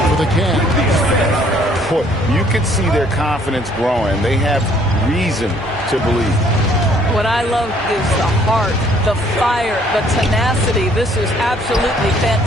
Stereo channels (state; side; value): normal; both; correlation 0.62